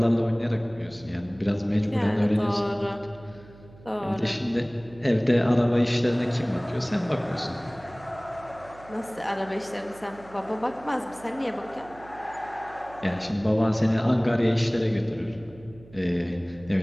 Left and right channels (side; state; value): right; noise; hum, 22 dB below the sound